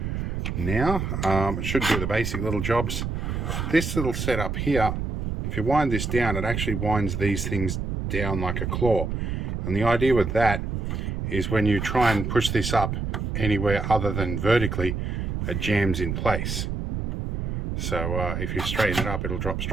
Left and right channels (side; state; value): right; noise; rumble, 2 dB below the sound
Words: Now, it should do the basic little jobs. This little setup here, if you wind this down, it actually winds these things down like a claw. And the idea with that is when you try and push this up anywhere other than vertically, it jams in place. So if you straighten it up, it'll drop